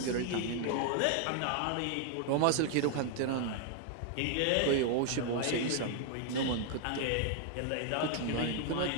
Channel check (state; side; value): different; both; correlation 0.00